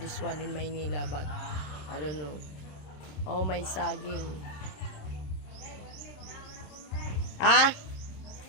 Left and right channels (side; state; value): right; late; 27 ms